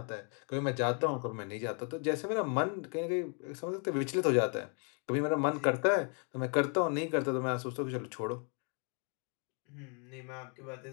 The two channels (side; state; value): right; quieter; 39.4 dB